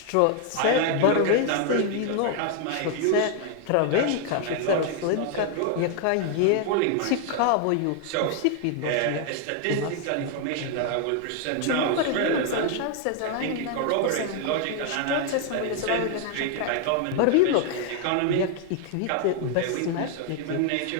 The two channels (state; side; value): different; both; correlation 0.00